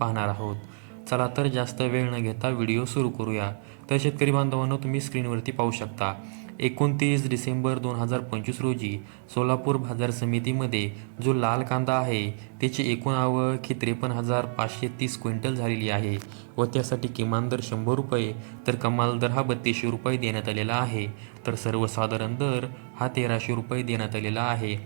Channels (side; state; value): left; silent; digital silence